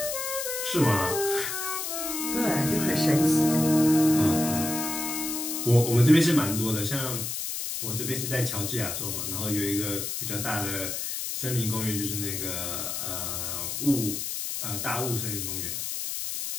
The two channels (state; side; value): noise; left; hiss, 3 dB below the sound